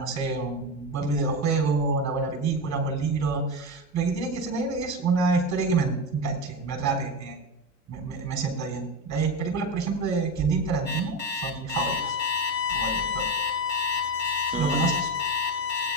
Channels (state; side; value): normal; both; correlation 0.17